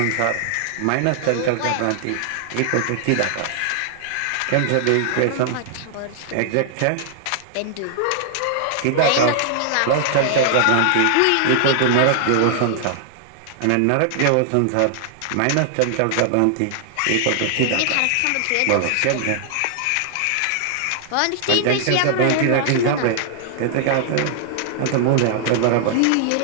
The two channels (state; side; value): different; both; correlation 0.00